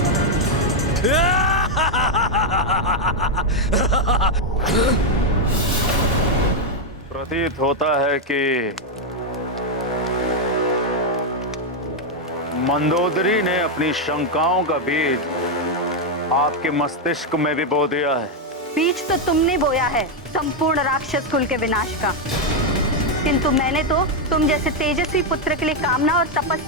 प्रतीत होता है कि मंदोदरी ने अपनी शंकाओं का बीज आपके मस्तिष्क में भी बो दिया है। बीज तो तुमने बोया है संपूर्ण राक्षस कुल के विनाश का, किंतु मैंने तो तुम जैसे तेजस्वी पुत्र के लिए कामना और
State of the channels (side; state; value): both; normal; correlation 0.02